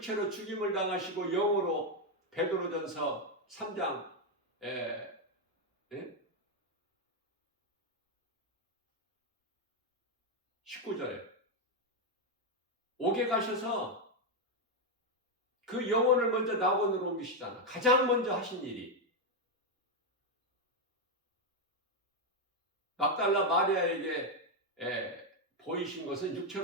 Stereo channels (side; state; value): both; normal; correlation 0.04